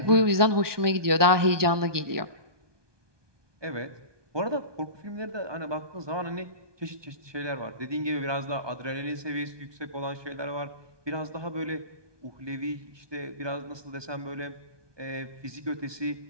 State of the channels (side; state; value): left; late; 1.2 ms